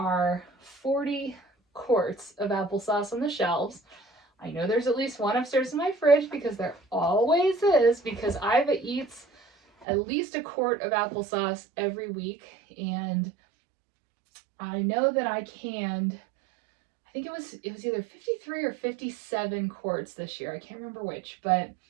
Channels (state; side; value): drops out; left; at 9.9 s